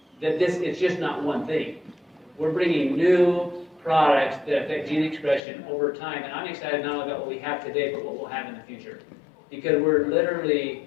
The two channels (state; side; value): drops out; right; at 5.4 s